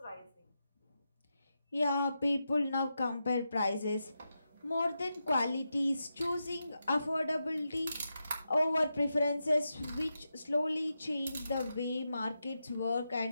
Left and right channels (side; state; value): both; inverted; correlation -0.88